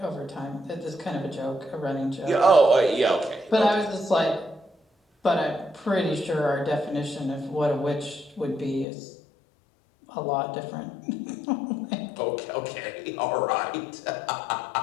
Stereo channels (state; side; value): drops out; right; at 8.8 s